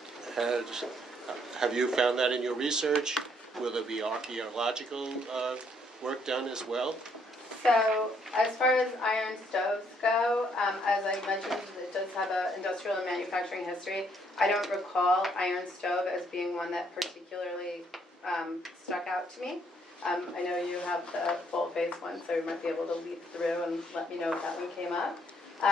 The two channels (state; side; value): normal; both; correlation 0.69